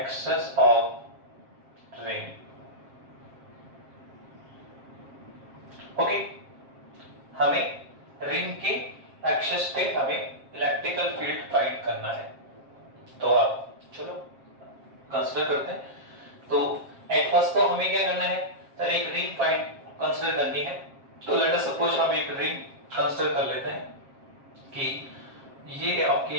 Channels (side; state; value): left; late; 7.5 ms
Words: of ring. Okay, हमें रिंग के एक्सेस पे हमें इलेक्ट्रिकल फील्ड फाइंड करना है। तो आप चलो कंसीडर करते हैं। तो एट फर्स्ट तो हमें क्या करना है? सर एक रिंग फाइंड कंसीडर करनी है। तो लेट अस सपोज हम एक रिंग कंसीडर कर लेते हैं कि ये आपकी